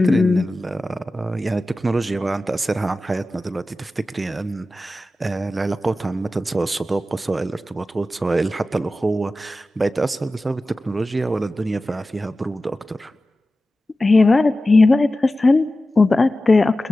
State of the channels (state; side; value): normal; both; correlation 0.94